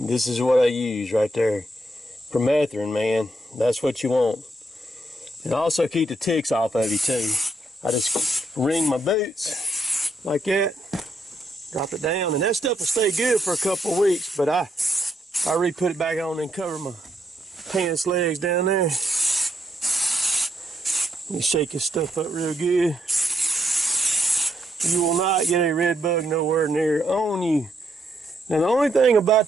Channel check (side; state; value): both; normal; correlation 0.77